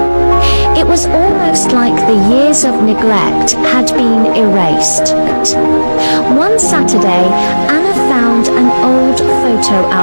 It was almost like the years of neglect had been erased. One Saturday, Anna found an old photo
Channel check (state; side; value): inverted; both; correlation -1.00